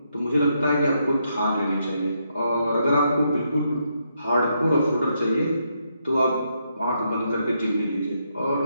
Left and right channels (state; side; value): inverted; both; correlation -0.78